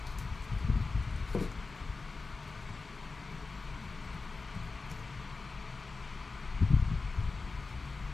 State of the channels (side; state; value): right; quieter; 4.0 dB